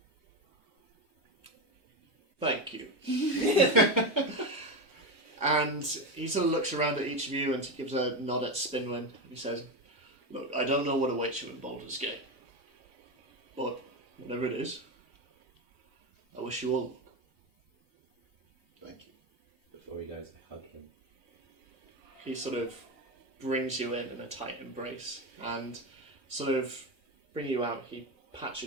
thank you. And he sort of looks around at each of you and he gives a nod at Spinwin and he says, look, I don't know what awaits you in Baldur's Gate, but whatever it is, I wish you all luck. Thank you. Before he goes, I hug him. He sort of brings you in a tight embrace and sort of bring you out. He pats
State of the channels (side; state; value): both; normal; correlation 0.15